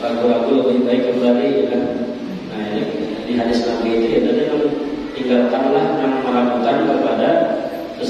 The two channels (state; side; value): identical; both; correlation 1.00